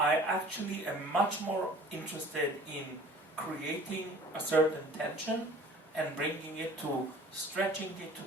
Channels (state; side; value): normal; both; correlation 0.48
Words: am much more interested in creating a certain tension and bringing it to stretching it